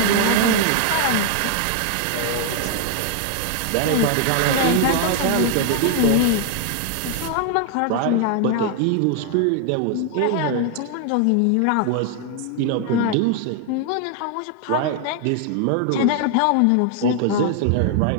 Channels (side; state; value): both; different; correlation 0.00